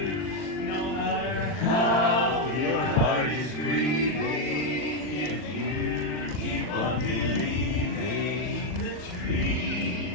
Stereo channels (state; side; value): late; right; 40 ms